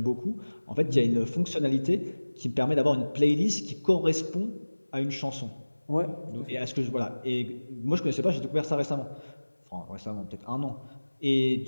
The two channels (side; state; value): both; inverted; correlation -1.00